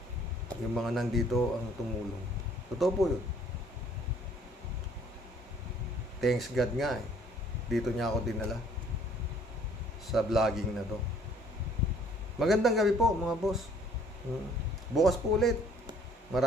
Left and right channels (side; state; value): both; normal; correlation 0.59